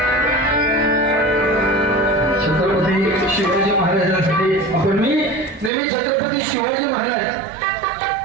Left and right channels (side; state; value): left; drops out; at 5.7 s